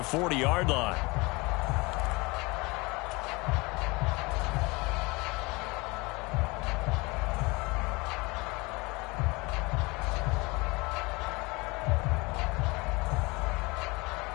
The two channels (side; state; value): right; quieter; 25.2 dB